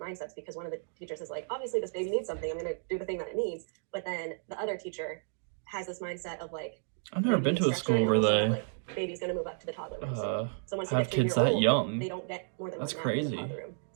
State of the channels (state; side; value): silent; left; digital silence